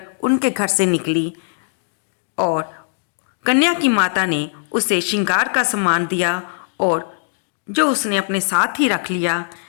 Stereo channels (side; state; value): right; silent; digital silence